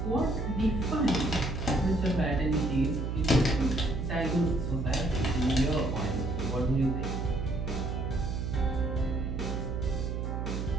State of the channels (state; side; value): noise; right; hum, 2 dB below the sound